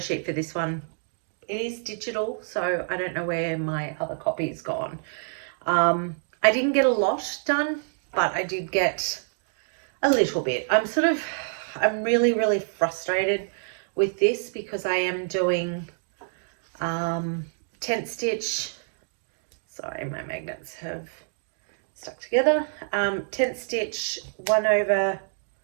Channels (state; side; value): silent; left; digital silence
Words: for this one. It is digital, so I don't know where my other copy has gone. I didn't get a lot done, but I did get a little bit. I'm really frustrated with this because I am doing tent stitch. Sorry, my magnets have stuck together. Tent stitch